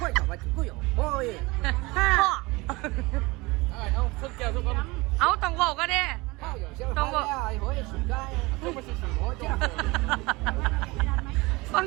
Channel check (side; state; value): left; quieter; 23.4 dB